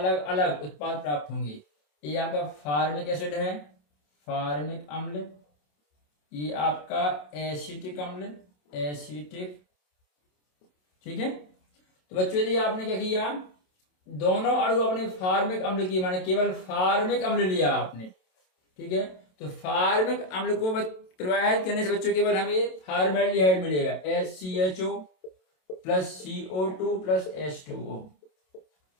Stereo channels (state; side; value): late; right; 27 ms